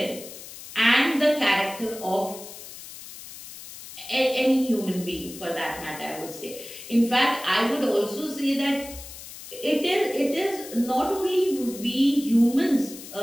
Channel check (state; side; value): noise; left; hiss, 14 dB below the sound